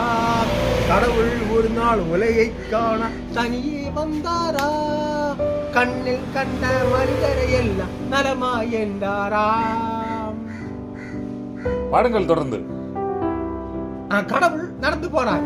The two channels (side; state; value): both; identical; correlation 1.00